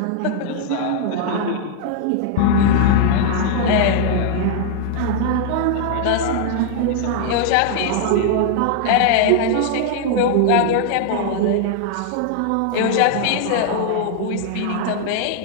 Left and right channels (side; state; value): both; different; correlation -0.01